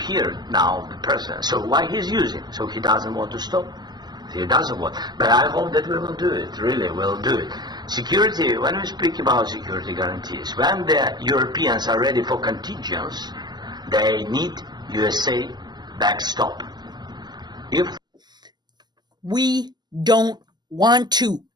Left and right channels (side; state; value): left; late; 0.21 ms